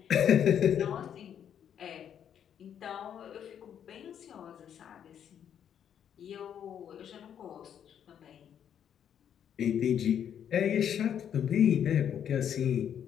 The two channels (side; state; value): right; quieter; 9.0 dB